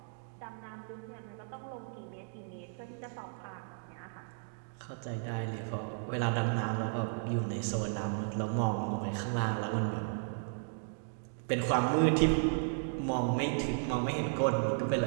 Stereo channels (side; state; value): left; silent; digital silence